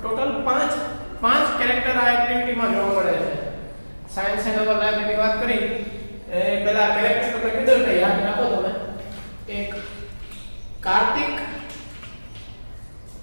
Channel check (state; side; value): inverted; both; correlation -1.00